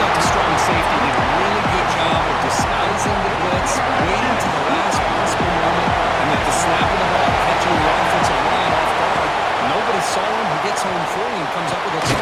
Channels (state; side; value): identical; both; correlation 1.00